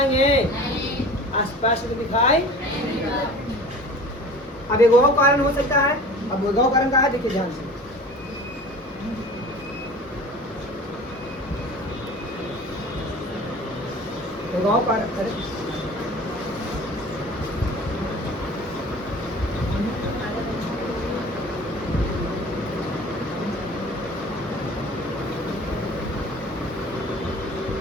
स्पष्ट तो दिखाई। अब एक और कारण हो सकता है। अब वो कारण का है, देखिए ध्यान से। एक और कारण,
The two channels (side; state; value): both; normal; correlation 0.41